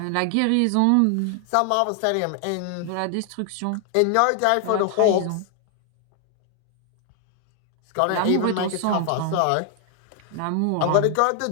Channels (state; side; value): different; both; correlation 0.00